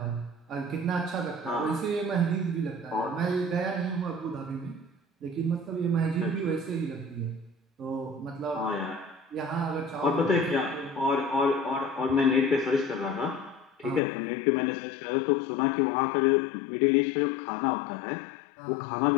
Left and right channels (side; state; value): right; drops out; at 14.0 s